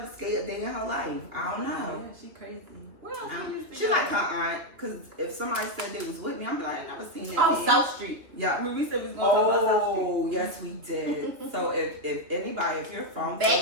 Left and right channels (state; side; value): late; left; 3.2 ms